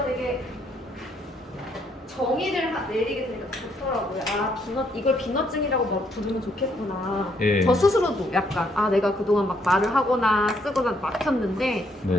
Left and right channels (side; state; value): both; normal; correlation 0.71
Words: 되게 정의를 내리게 되니까 좋더라고요. 아, 이걸 비너증이라고 부르면 좋겠구나. 예. 저 스스로도 약간, 아, 내가 그동안 막 말을 하거나 쓰거나 막혔는데,